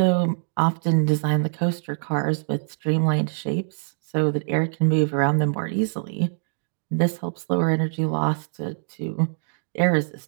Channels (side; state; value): left; silent; digital silence